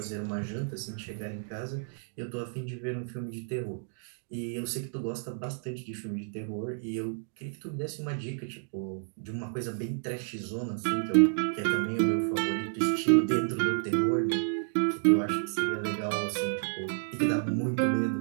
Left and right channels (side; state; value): left; silent; digital silence